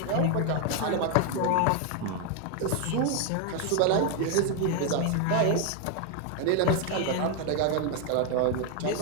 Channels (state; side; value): different; both; correlation 0.01